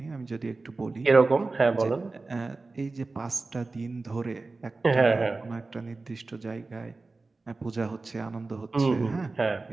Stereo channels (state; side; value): quieter; left; 3.6 dB